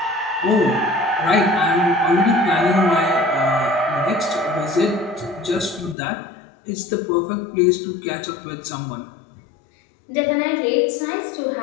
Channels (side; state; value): right; drops out; at 6.0 s